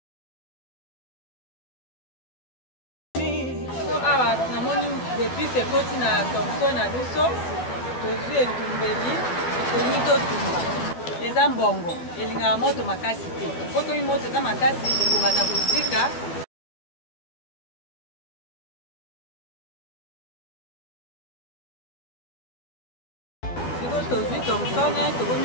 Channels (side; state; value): right; late; 12 ms